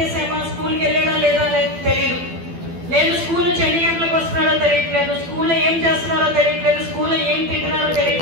స్కూల్కి వెళ్ళాడా లేదా తెలియదు, లేదు స్కూల్ నుంచి ఎన్ని గంటలకు వస్తున్నారో తెలియట్లేదు, స్కూల్లో ఏం చేస్తున్నారో తెలియట్లేదు, స్కూల్లో ఏం తింటున్నారో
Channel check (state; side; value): late; left; 12 ms